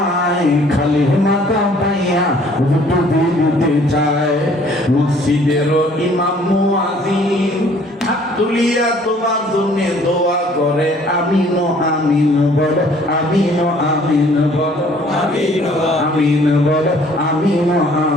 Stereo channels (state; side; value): normal; both; correlation 0.57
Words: খালি মাথা পাইয়া হুজুর ডুবে দিতে চায়। মসজিদের ইমাম মুয়াজ্জিন হাত তুলিয়া তোমার জন্য দোয়া করে, আমিন আমিন বলো, আমিন আমিন বলো, আমিন আমিন বলো, আমিন